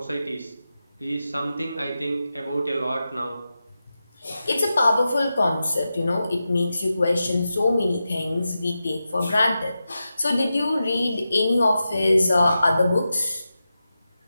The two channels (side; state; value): both; inverted; correlation -0.91